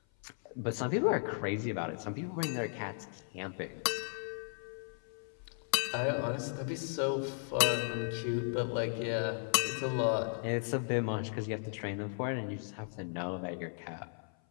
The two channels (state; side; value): silent; right; 54 dB below the other